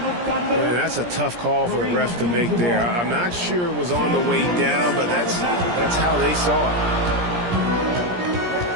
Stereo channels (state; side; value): late; left; 17 ms